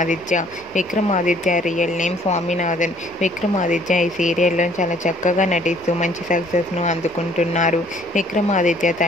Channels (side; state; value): both; normal; correlation 0.59